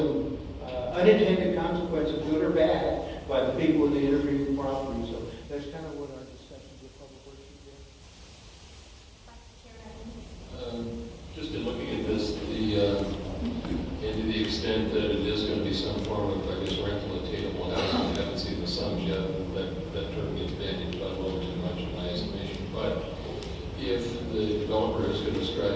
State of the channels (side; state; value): both; identical; correlation 1.00